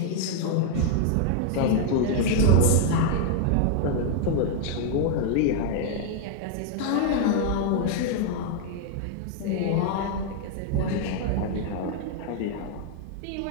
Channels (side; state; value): both; different; correlation 0.00